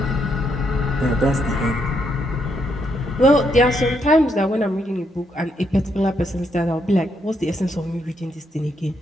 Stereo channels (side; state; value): both; normal; correlation 0.76